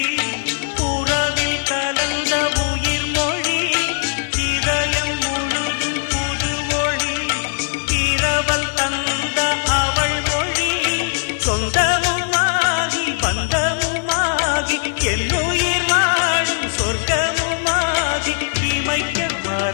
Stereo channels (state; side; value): silent; right; digital silence